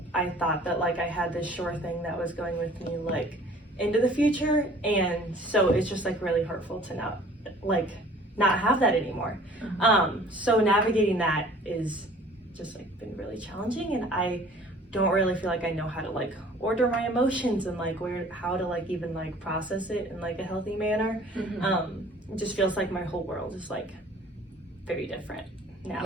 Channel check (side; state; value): both; normal; correlation 0.51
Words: I thought that I had this sure thing that was going with me into the future, and so it's just really hurtful to not have that anymore. So navigating that is just been really challenging, and I don't really feel I know how to order my emotions and how to even process it in a healthy manner. It just feels my whole world is very different now.